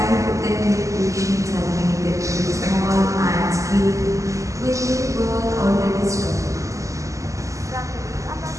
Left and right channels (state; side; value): late; left; 0.16 ms